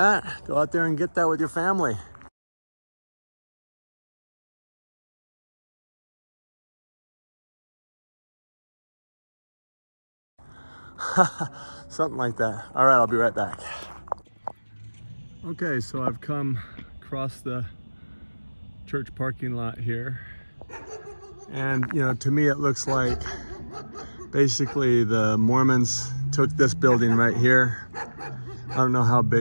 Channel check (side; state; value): both; inverted; correlation -1.00